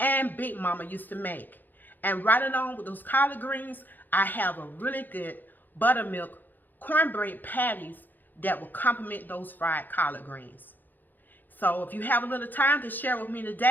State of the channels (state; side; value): late; right; 0.087 ms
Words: Big Mama used to make. And right along with those collard greens, I have a really good buttermilk cornbread patties that will complement those fried collard greens. So if you have a little time to share with me